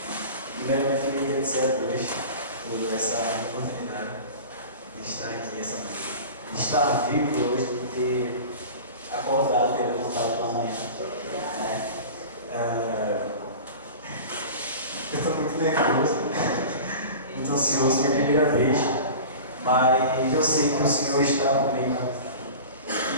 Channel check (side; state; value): both; inverted; correlation -0.36